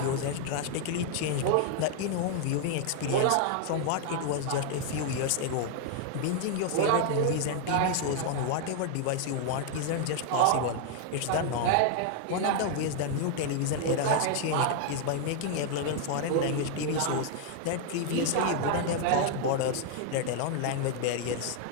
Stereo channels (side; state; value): both; different; correlation 0.00